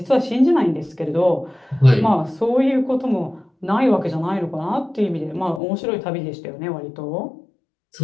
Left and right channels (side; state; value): right; drops out; at 5.6 s